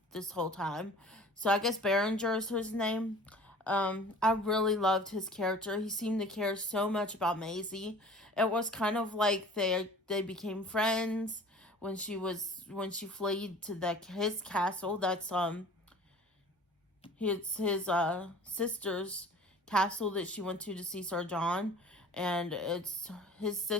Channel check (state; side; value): normal; both; correlation 0.45